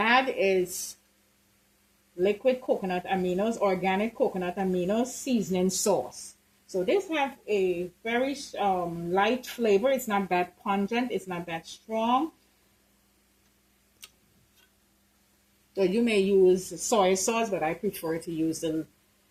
is liquid coconut aminos, organic coconut aminos seasoning sauce. So this have a very light flavor. It's not that pungent. It's not that strong. So you may use soy sauce, but I prefer to use the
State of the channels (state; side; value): identical; both; correlation 1.00